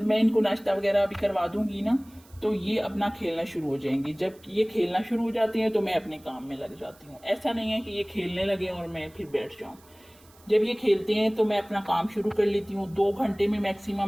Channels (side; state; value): right; noise; hiss, 28 dB below the sound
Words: मैं इनको नाश्ता वगैरह भी करवा दूंगी ना, तो ये अपना खेलना शुरू हो जाएंगे। जब ये खेलना शुरू हो जाते हैं तो मैं अपने काम में लग जाती हूँ। ऐसा नहीं है कि ये खेलने लगे और मैं फिर बैठ जाऊँ। जब ये खेलते हैं तो मैं अपना काम शुरू कर लेती हूँ। 2 घंटे में मैक्सिमम